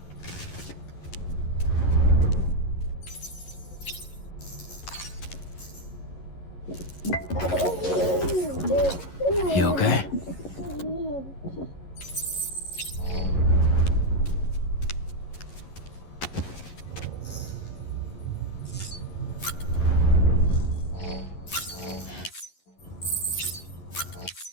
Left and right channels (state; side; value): late; right; 11 ms